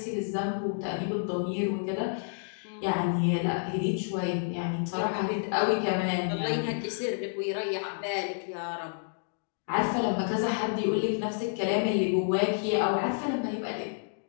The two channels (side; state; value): right; silent; digital silence